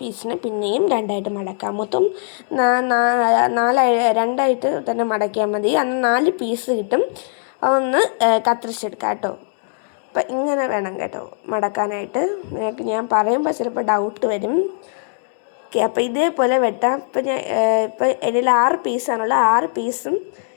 പീസിന് പിന്നെയും രണ്ടായിട്ട് മടക്കുക. മൊത്തം രണ്ടായിട്ട് തന്നെ മടക്കിയാൽ മതി. അന്ന് 4 പീസ് കിട്ടും. അതൊന്ന് കത്തിരിച്ചെടുക്കാം കേട്ടോ. അപ്പം ഇങ്ങനെ വേണം കേട്ടോ മടക്കാനായിട്ട്. നിങ്ങൾക്ക് ഞാൻ പറയുമ്പോൾ ചിലപ്പോൾ ഡൗട്ട് വരും. ഓക്കെ, അപ്പോൾ ഇതേപോലെ വെട്ടാം. ഇപ്പോൾ ഇതിൽ 6 പീസാണുള്ളത്. 6 പീസും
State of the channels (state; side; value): silent; right; digital silence